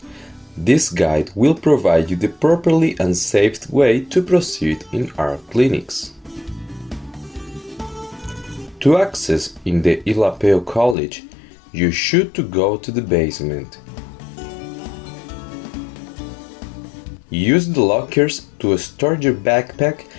This guide will provide you the properly and safe way to proceed in our clinics. To access in the ILAPEO college, you should to go to the basement. Use the lockers to store your backpack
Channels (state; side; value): drops out; right; at 11.0 s